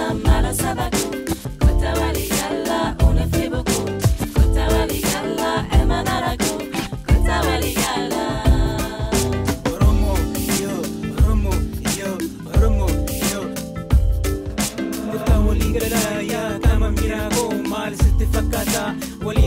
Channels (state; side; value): identical; both; correlation 1.00